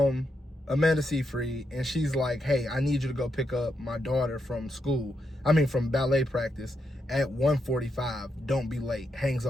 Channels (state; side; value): normal; both; correlation 0.82